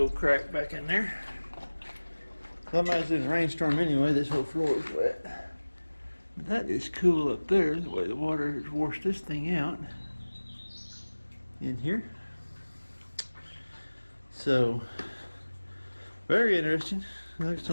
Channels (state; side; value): inverted; both; correlation -1.00